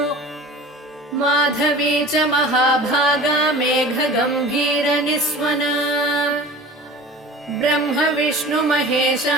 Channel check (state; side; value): normal; both; correlation 0.40